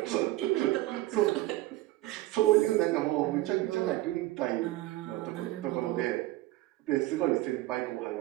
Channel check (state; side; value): quieter; left; 17.3 dB